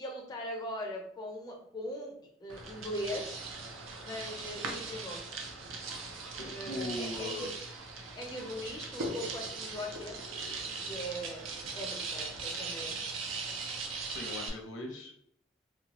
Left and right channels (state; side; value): normal; both; correlation 0.32